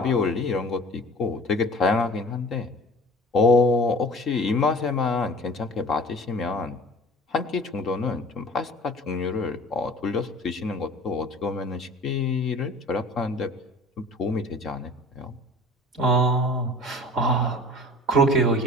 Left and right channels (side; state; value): both; normal; correlation 0.43